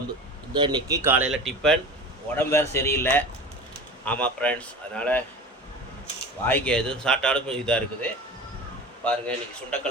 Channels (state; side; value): normal; both; correlation 0.34